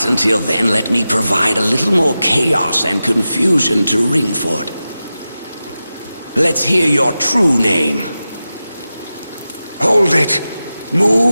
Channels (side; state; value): both; inverted; correlation -0.93